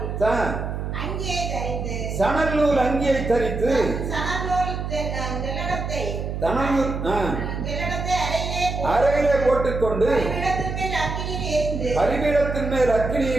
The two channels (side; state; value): right; noise; hum, 4 dB below the sound